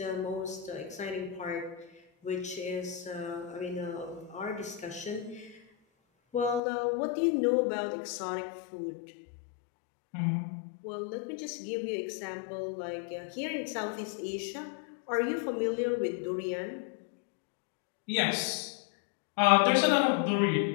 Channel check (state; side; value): drops out; right; at 6.6 s